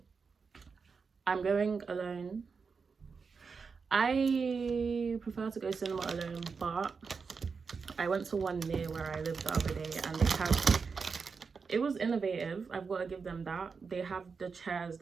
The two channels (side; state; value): left; quieter; 5.2 dB